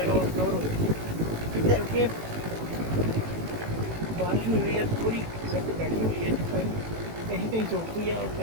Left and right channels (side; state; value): left; late; 18 ms